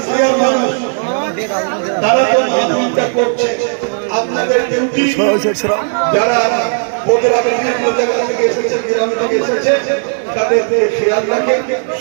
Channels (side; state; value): left; silent; 63 dB below the other